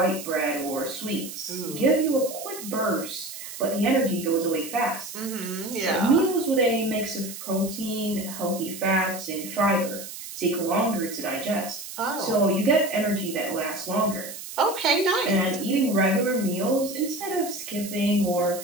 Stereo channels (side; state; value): right; noise; hiss, 11 dB below the sound